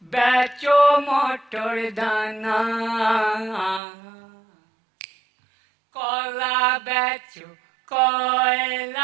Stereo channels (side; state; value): left; drops out; at 3.8 s